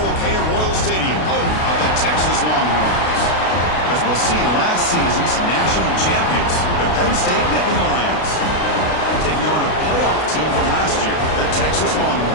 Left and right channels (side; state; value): right; late; 32 ms